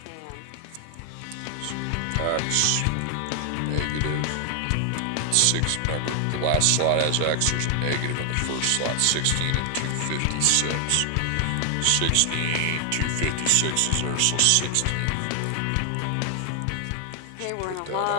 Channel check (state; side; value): different; both; correlation 0.00